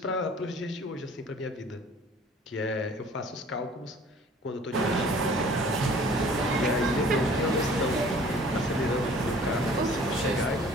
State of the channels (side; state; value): both; normal; correlation 0.51